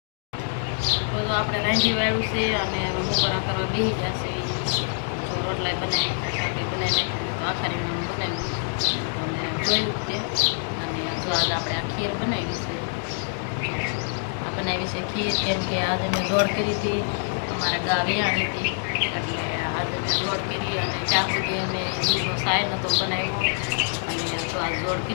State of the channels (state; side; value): silent; right; digital silence